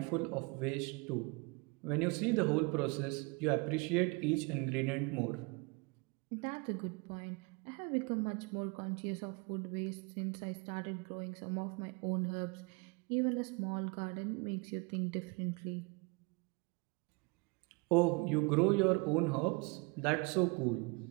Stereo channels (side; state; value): left; quieter; 28.9 dB